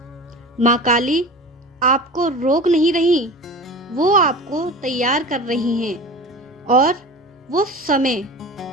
माँ काली आपको रोक नहीं रही, वो आपको तैयार कर रही हैं, और वो समय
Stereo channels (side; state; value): both; normal; correlation 0.34